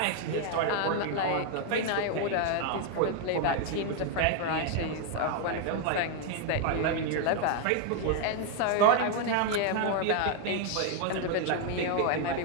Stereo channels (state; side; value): different; both; correlation 0.00